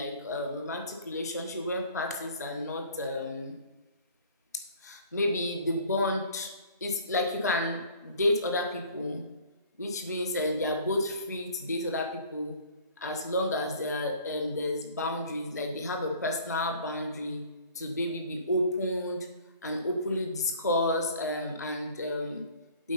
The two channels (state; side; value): inverted; both; correlation -0.51